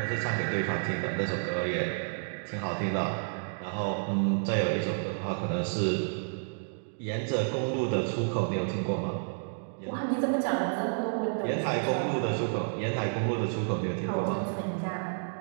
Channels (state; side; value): silent; left; digital silence